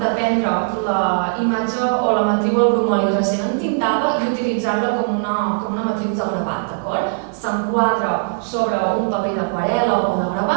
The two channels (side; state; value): left; silent; 58 dB below the other